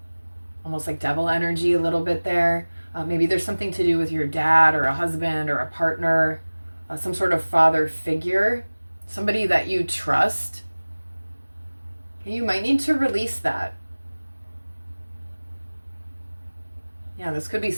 Almost like devil energy a little bit there. Maybe there's something to do with your dad or a husband or a partner, some sort of father figure, somebody that you trust. You might need to release that. Yeah, this could be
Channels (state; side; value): inverted; both; correlation -1.00